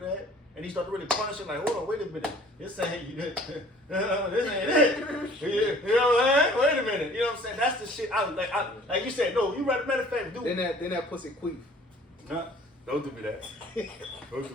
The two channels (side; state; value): both; normal; correlation 0.52